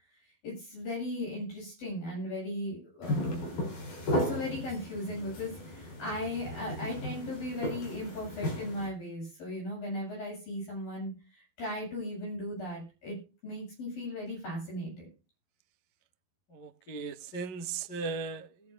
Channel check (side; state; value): right; late; 11 ms